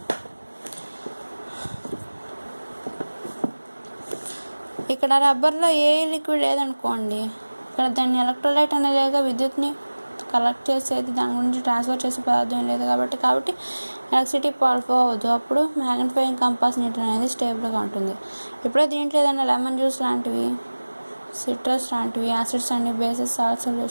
ఇక్కడ రబ్బర్లో ఏ లిక్విడ్ లేదనుకోండి, ఇక్కడ దాన్ని ఎలక్ట్రోలైట్ అనేది విద్యుత్ని కలెక్ట్ చేసేది, దాని గురించి ట్రాన్స్ఫర్ చేసే పదార్థం లేదు కాబట్టి ఎలక్ట్రిసిటీ ఫ్లో అవ్వదు. అప్పుడు మ్యాగ్నిఫైయింగ్ కంపాస్ నీడిల్ అనేది స్టేబుల్గా ఉంటుంది. ఇప్పుడే దీంట్లో ఏదైనా లెమన్ జ్యూస్ లాంటివి సిట్రస్ లాంటివి acids and bases salt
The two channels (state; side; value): inverted; both; correlation -1.00